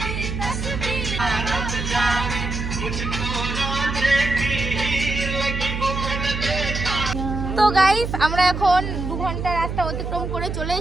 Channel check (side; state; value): right; noise; hum, 4 dB below the sound